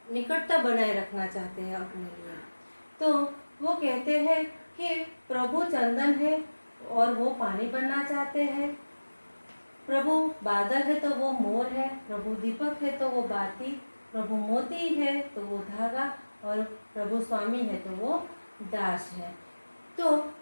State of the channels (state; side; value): inverted; both; correlation -1.00